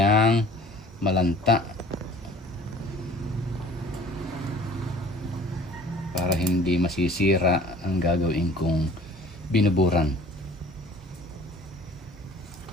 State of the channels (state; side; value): normal; both; correlation 0.48